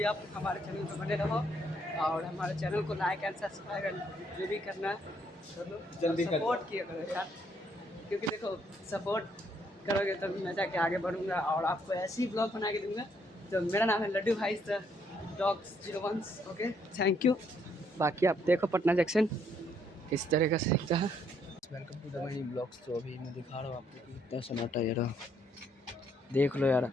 आप हमारे चैनल पर बने रहो और हमारे चैनल को लाइक एंड सब्सक्राइब एंड जो भी करना है जल्दी सपोर्ट किया करो यार, क्योंकि देखो सपोर्ट करोगे तभी मैं जाके आगे बढ़ूँगा और आपको ऐसे ही ब्लॉग बना के दूँगा। तो मेरा नाम है लड्डू भाई डॉग्स 01। Okay thank you. बाकी आप देखो पटना जंक्शन किस तरह का सीखता है। Welcome to the my blogs. तो अभी मैं दिखा रहा हूँ आपको कि कितना सन्नाटा यार, देख लो यार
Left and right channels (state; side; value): normal; both; correlation 0.70